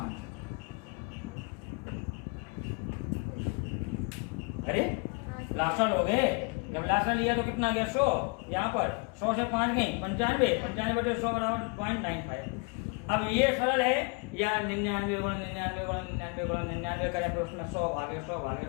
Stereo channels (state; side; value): quieter; right; 33.4 dB